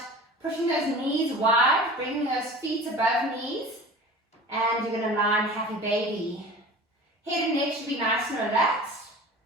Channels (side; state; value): both; normal; correlation 0.39